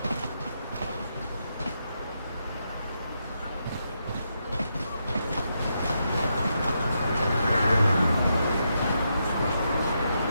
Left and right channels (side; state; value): both; inverted; correlation -0.82